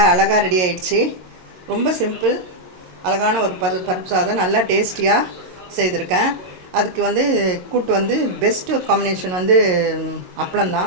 ரெடி ஆயிடுச்சு. ரொம்ப சிம்பிள், அழகான ஒரு பருப்பு சாதம் நல்லா டேஸ்டியாக செய்திருக்கேன். அதுக்கு கூட்டு பெஸ்ட்டு காம்பினேஷன்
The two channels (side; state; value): left; late; 22 ms